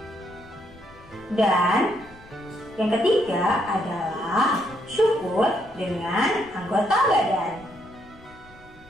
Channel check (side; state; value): left; noise; rumble, 24 dB below the sound